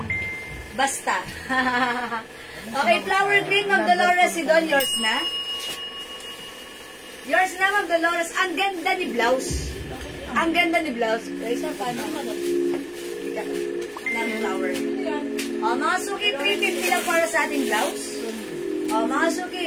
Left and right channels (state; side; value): identical; both; correlation 1.00